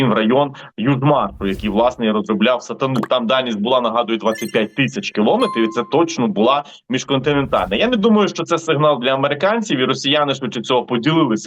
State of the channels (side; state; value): both; identical; correlation 1.00